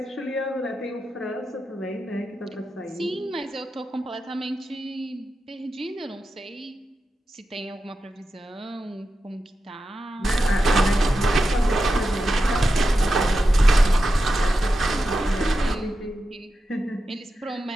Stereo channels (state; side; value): normal; both; correlation 0.90